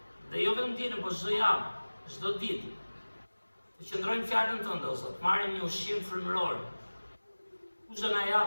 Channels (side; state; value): both; inverted; correlation -1.00